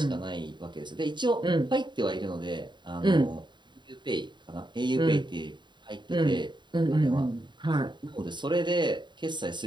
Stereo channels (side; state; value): left; late; 0.22 ms